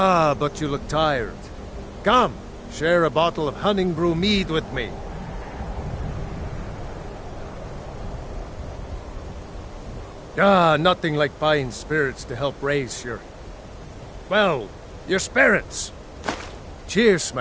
but you look tired. Come, share a bottle of Hunting Brew mead with me. Ah, nothing like fine spirits to help raise your... well, your spirits. Cheers,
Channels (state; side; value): identical; both; correlation 1.00